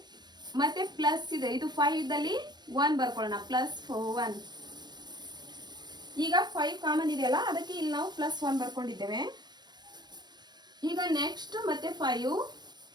ಮತ್ತು ಪ್ಲಸ್ ಇದೆ, ಇದು 5 ಇದ್ದಲ್ಲಿ 1 ಬರ್ಕೊಳ್ಳೋಣ, +1. ಈಗ 5 ಕಾಮನ್ ಇದೆಯಲ್ಲ, ಅದಕ್ಕೆ ಇಲ್ಲಿ ನಾವು +1 ಬರ್ಕೊಂಡಿದ್ದೇವೆ. ಈಗ ನೆಕ್ಸ್ಟ್ ಮತ್ತೆ 5,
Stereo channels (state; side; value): late; left; 0.21 ms